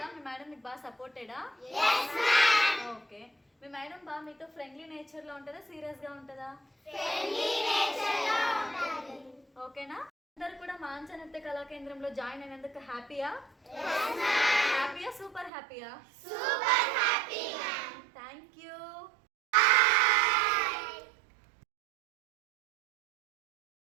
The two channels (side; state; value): left; drops out; at 15.5 s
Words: మీ మేడం మీకు బాగా సపోర్టెడా? ఓకే, మీ మేడం బాగా మీతో ఫ్రెండ్లీ నేచర్ లో ఉంటుందా, సీరియస్ గా ఉంటుందా? ఓకేనా? అందరు కూడా మానస నృత్య కళాకేంద్రంలో జాయిన్ అయినందుకు హ్యాపీయా? సూపర్ హ్యాపీయా?